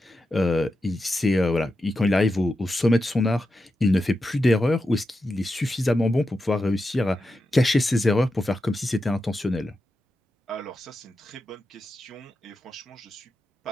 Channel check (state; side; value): normal; both; correlation 0.89